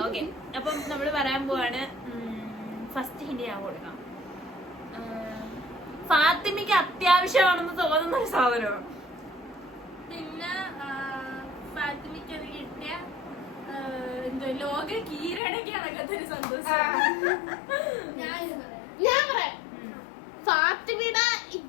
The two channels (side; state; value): right; drops out; at 15.4 s